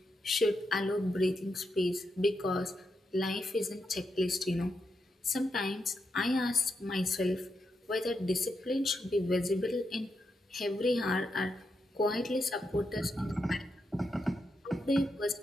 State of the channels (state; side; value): normal; both; correlation 0.84